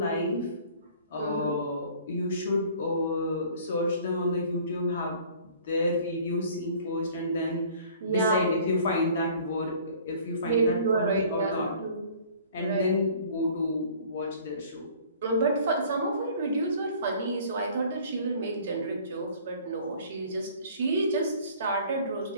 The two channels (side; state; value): both; inverted; correlation -0.51